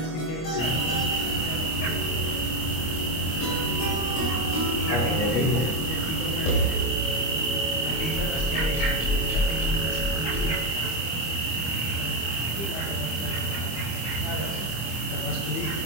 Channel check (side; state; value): right; late; 25 ms